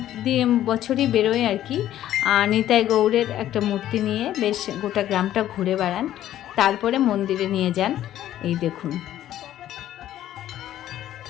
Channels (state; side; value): quieter; right; 12.5 dB